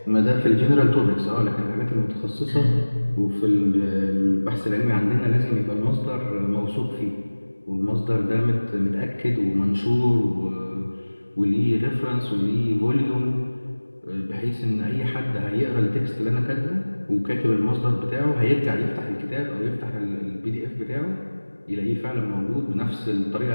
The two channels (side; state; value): both; inverted; correlation -1.00